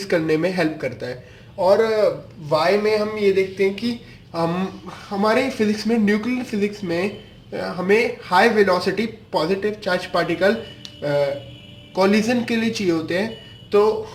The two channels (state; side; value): identical; both; correlation 1.00